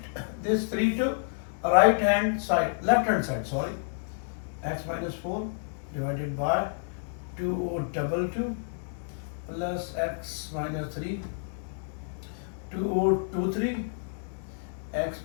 this 3 to right hand side, left hand side, sorry. X minus 4 divided by 2022 plus x minus 3, 2023, x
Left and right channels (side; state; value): right; silent; digital silence